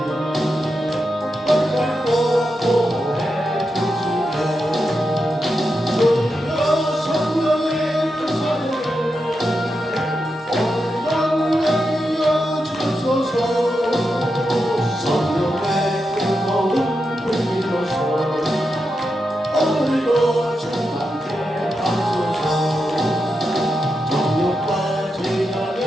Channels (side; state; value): both; normal; correlation 0.87